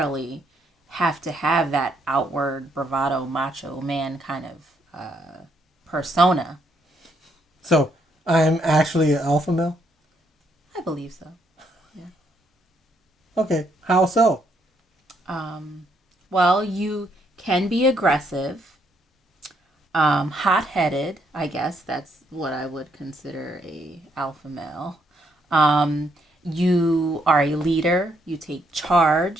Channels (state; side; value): normal; both; correlation 0.73